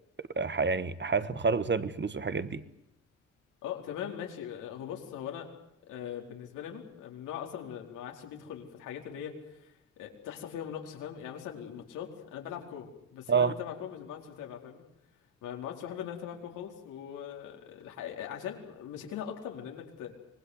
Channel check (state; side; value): normal; both; correlation -0.09